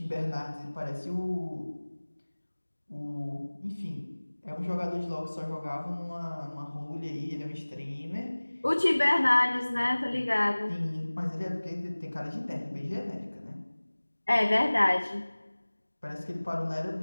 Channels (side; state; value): both; inverted; correlation -1.00